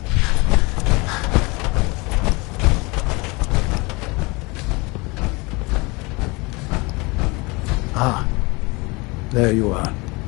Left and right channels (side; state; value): right; quieter; 26.3 dB